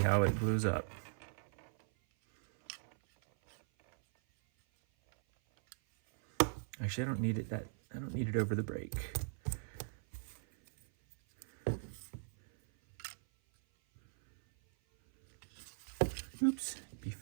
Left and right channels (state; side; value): silent; left; 52 dB below the other